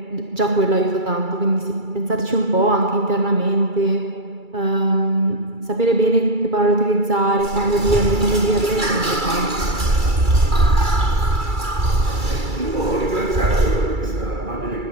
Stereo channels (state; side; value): late; left; 2.3 ms